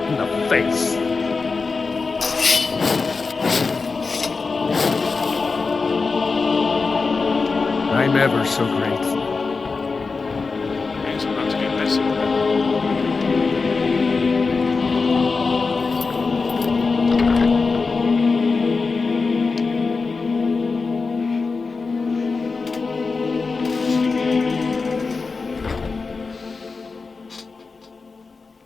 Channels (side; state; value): right; quieter; 4.4 dB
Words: in the face. I'm ever so grateful. It's about to get messy.